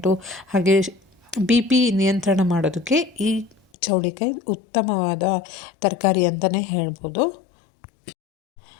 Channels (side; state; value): right; drops out; at 3.6 s